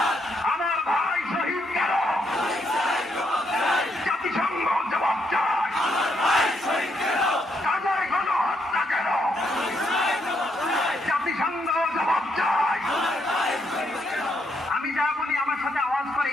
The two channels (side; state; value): both; normal; correlation 0.76